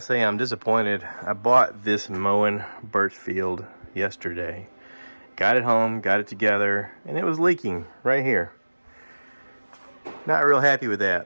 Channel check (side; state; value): both; inverted; correlation -1.00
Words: I'm disappointed. I bought this Moen Birchfield yesterday. Got it home, got it together, and it was leaking right here. Not real happy with that.